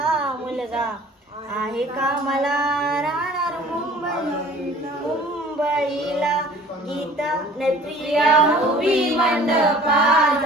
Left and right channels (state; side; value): normal; both; correlation 0.48